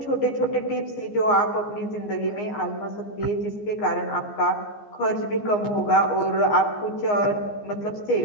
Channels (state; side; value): late; right; 14 ms